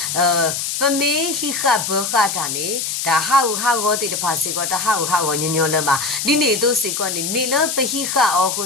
ပမေဟိခဘခတာနေဒါဟာကိုတေတဖာစီကောတာဟာကိုညညလမဒီနေသူစီကောနေမေလပဟိခအောခု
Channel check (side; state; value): left; noise; hiss, 3 dB below the sound